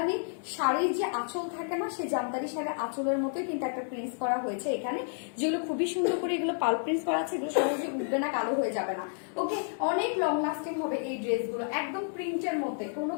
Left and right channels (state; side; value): silent; right; digital silence